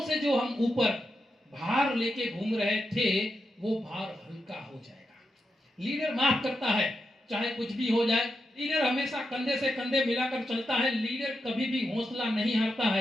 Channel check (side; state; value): both; normal; correlation 0.86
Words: से जो हम ऊपर भार लेके घूम रहे थे वो भार हल्का हो जाएगा। लीडर माफ करता है, चाहे कुछ भी हो जाए। लीडर हमेशा कंधे से कंधे मिलाकर चलता है। लीडर कभी भी हौसला नहीं हारता